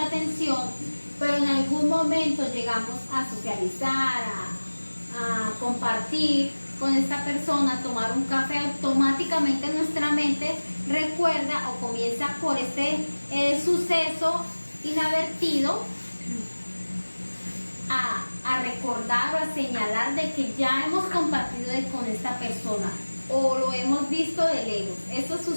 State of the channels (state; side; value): inverted; both; correlation -1.00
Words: atención, pero en algún momento llegamos a socializar, a compartir con esta persona, tomar un café, automáticamente nuestra mente recuerda o comienza por este suceso inadvertido a recordar o a señalar de que ya hemos compartido con esta persona o lo hemos visto de lejos. Eso